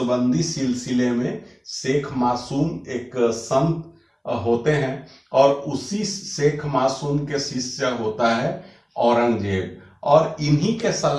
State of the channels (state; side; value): identical; both; correlation 1.00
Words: सिलसिले में शेख मासूम एक संत होते हैं और उसी शेख मासूम के शिष्य होता है औरंगजेब। और इन्हीं के